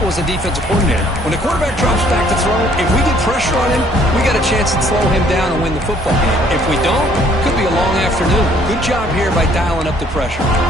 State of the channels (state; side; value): normal; both; correlation 0.61